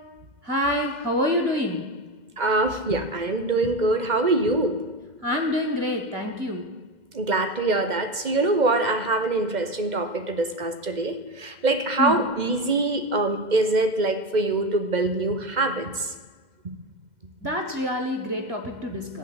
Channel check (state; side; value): late; left; 2.1 ms